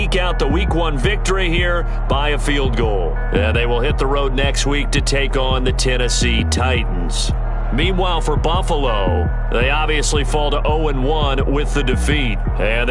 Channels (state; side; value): identical; both; correlation 1.00